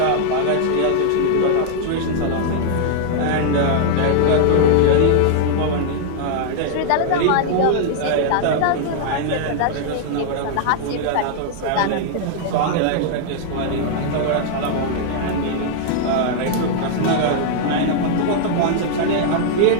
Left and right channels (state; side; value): different; both; correlation -0.01